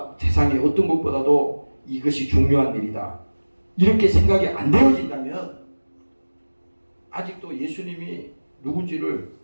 세상에 어떤 것보다도 이것이 중요한 일이다 이렇게 생각이 안 되어진다면 아직도 예수님이 누군지를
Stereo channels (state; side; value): inverted; both; correlation -1.00